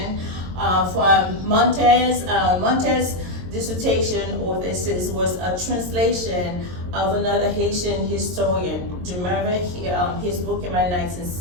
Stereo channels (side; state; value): left; late; 22 ms